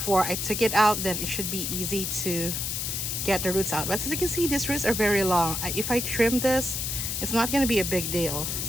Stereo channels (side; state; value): left; noise; hiss, 2 dB below the sound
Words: I took it out, then it should be easy to get the roots out. But as you can see, these roots are very long. If I trim this, it's not going to be a big deal,